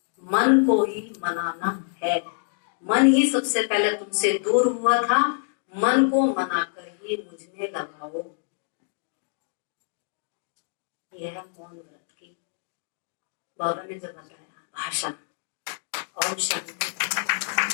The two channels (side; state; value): right; silent; digital silence